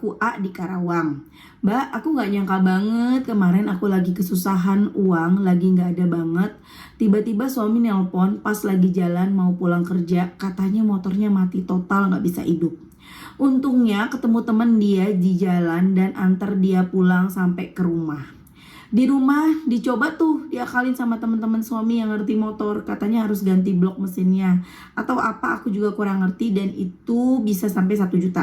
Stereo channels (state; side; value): identical; both; correlation 1.00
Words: A di Karawang. Mbak, aku gak nyangka banget. Kemarin aku lagi kesusahan uang, lagi gak ada banget. Tiba-tiba suami nelpon pas lagi jalan mau pulang kerja. Katanya motornya mati total, gak bisa hidup. Untungnya ketemu temen dia di jalan dan antar dia pulang sampai ke rumah. Di rumah dicoba tuh diakalin sama teman-teman suami yang ngerti motor, katanya harus ganti blok mesinnya atau apa, aku juga kurang ngerti, dan itu bisa sampai 1